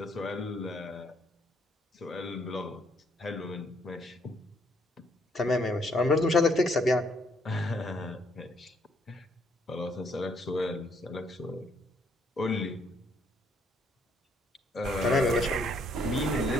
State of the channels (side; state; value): both; normal; correlation 0.69